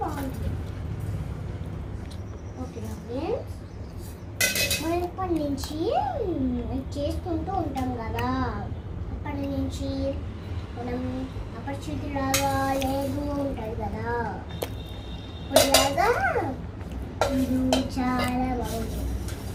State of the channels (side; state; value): both; identical; correlation 1.00